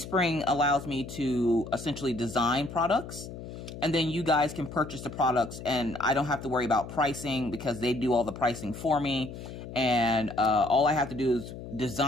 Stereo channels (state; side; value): noise; left; hum, 11 dB below the sound